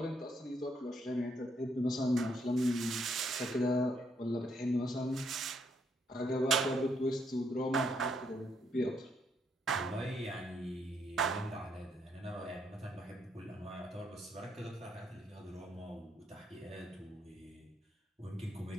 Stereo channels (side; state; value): both; normal; correlation 0.74